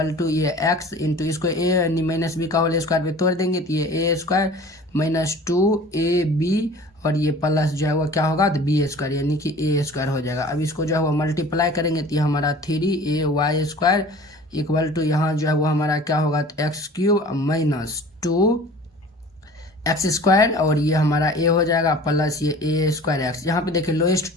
टू ये x इंटू इसको a माइनस बी का होल स्क्वायर पे तोड़ देंगे तो ये a² माइनस 2ab और ये प्लस जो है वो क्या होगा, तो b² यानी कि a² हो जाएगा। अब इसको जो है वो मल्टीप्लाई करेंगे तो ये हमारा 3ay² इक्वल टू यहाँ जो है वो हमारा क्या होगा, तो x³ माइनस 2x² और ये हमारा a हो जाएगा प्लस ये a²x। यहाँ पे देखिए लोएस्ट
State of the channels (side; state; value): both; normal; correlation 0.44